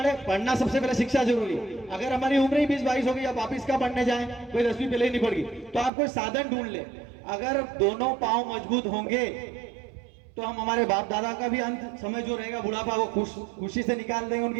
पढ़ना सबसे पहले शिक्षा जरूरी। अगर हमारी उम्र ही 20-22 हो गई, अब वापिस का पढ़ने जाए, कोई 10वीं पहले ही नहीं पड़ गई, तो आप कोई साधन ढूंढ ले। अगर दोनों पांव मजबूत होंगे तो हम हमारे बाप दादा का भी अंत समय जो रहेगा बुढ़ापा वो खुशी से निकाल देंगे,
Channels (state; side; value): drops out; left; at 5.9 s